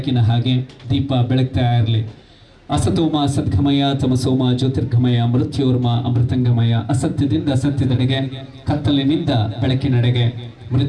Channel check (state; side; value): identical; both; correlation 1.00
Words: ಹಾಗೆ ದೀಪ ಬೆಳಗ್ತಾ ಇರಲಿ. ಅಸತೋಮ ಸದ್ಗಮಯ ತಮಸೋಮ ಜ್ಯೋತಿರ್ಗಮಯ ಮೃತ್ಯೋರ್ಮ ಅಮೃತಂಗಮಯ. ಅಸತ್ಯದಿಂದ ಸತ್ಯದೆಡೆಗೆ, ಕತ್ತಲಿನಿಂದ ಬೆಳಕಿನೆಡೆಗೆ,